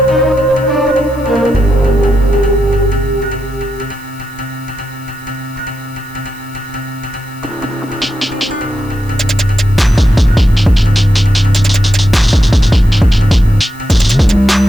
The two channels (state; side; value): noise; left; hiss, 25 dB below the sound